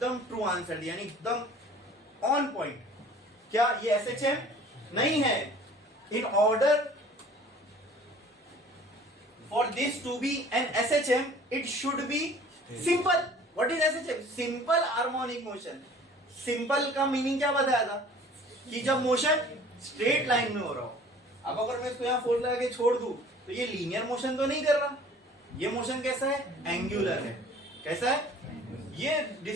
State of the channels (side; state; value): both; normal; correlation 0.49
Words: ट्रू आंसर दिया, यानी एकदम ऑन पॉइंट। क्या ये एसएचएम नहीं है? In order for this to be an SHM, it should be simple. What is SHM? Simple harmonic motion. Simple का मीनिंग क्या बताया था? कि जब मोशन स्ट्रेट लाइन में हो रहा हो। अब अगर मैं इसको यहाँ फोर्स लगा के छोड़ दूं तो ये लीनियर मोशन तो नहीं कर रहा। ये मोशन कैसा है? एंगुलर है। कैसा है? ये